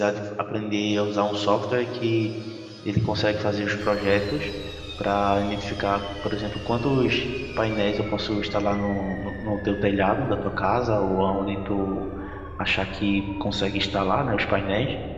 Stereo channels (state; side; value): identical; both; correlation 1.00